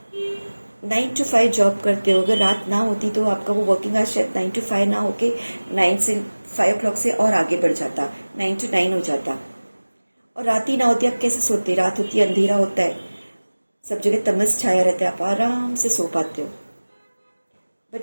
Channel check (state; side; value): inverted; both; correlation -1.00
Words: 9 to 5 जॉब करते हो, अगर रात ना होती तो आपका वो वर्किंग आवर्स शायद 9 to 5 ना होके 9 से 5 o'clock से और आगे बढ़ जाता, 9 to 9 हो जाता। और रात ही ना होती, आप कैसे सोते? रात होती है, अंधेरा होता है, सब जगह तमस छाया रहता है, आप आराम से सो पाते हो।